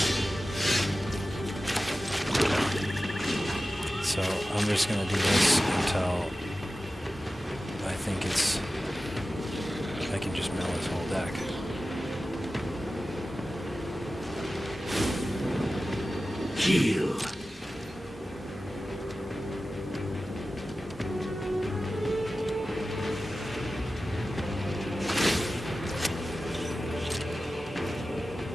So I'm just gonna do this until I think I can just mill his whole deck. Heal.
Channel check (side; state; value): both; normal; correlation 0.95